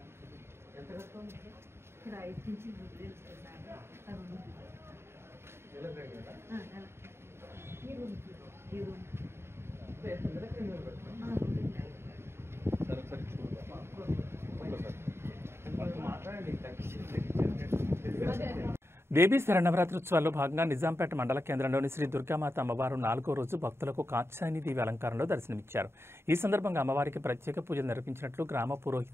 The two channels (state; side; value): late; left; 0.12 ms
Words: దేవీ శరణవరాత్రోత్సవాల్లో భాగంగా నిజాంపేట మండల కేంద్రంలోని శ్రీ దుర్గామాత అమ్మవారు 4వ రోజు భక్తులకు కాత్యాయని దేవి అలంకారంలో దర్శనమిచ్చారు. ఈ సందర్భంగా అమ్మవారికి ప్రత్యేక పూజలు నిర్వహించినట్లు గ్రామ